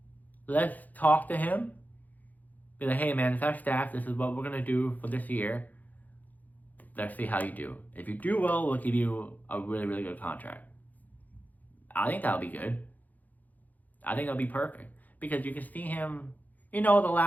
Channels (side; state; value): right; late; 0.081 ms